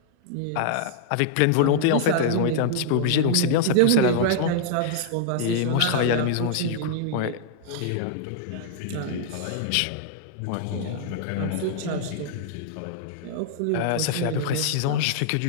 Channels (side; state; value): both; different; correlation -0.01